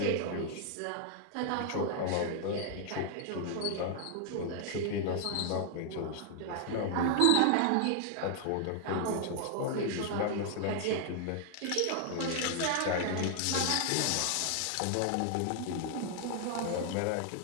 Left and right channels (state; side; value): different; both; correlation 0.00